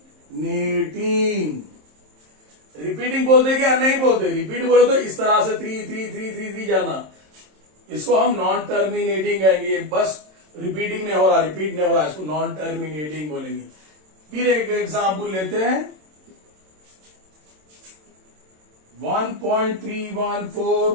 रिपीटिंग बोलते क्या, नहीं बोलते, रिपीट बोलो तो इस तरह से 3 3 3 3 3 जाना, इसको हम नॉन टर्मिनेटिंग कहेंगे। बस रिपीटिंग नहीं हो रहा, रिपीट नहीं हो रहा, इसको नॉन टर्मिनेटिंग बोलेंगे। फिर एक एग्जाम्पल लेते हैं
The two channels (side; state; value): left; late; 27 ms